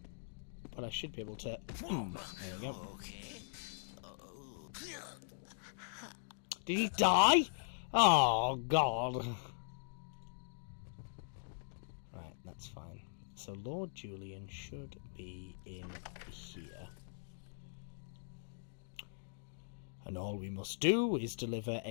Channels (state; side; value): silent; right; digital silence